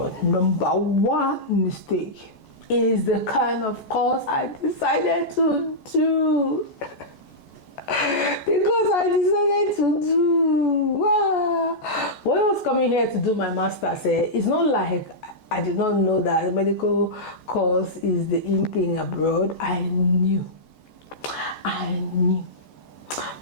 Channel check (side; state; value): right; late; 14 ms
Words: Number one mistake is the kind of course I decided to do. Because I decided to do. Wow. When I was coming here to do my master's, it's not like I did not know that a medical course is the in thing abroad. I knew.